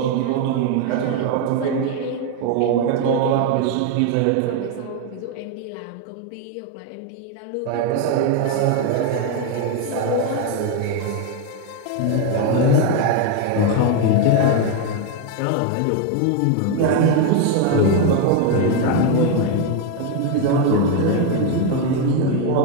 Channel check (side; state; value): both; different; correlation 0.01